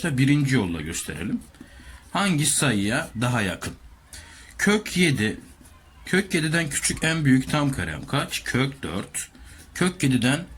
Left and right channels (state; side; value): identical; both; correlation 1.00